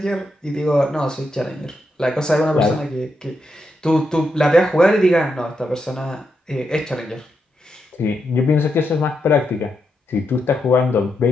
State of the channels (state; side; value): normal; both; correlation 0.83